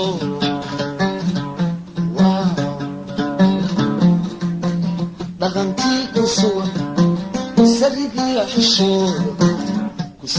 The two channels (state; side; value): identical; both; correlation 1.00